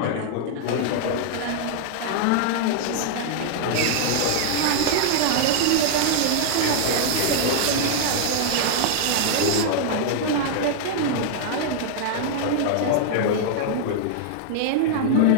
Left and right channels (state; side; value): different; both; correlation -0.01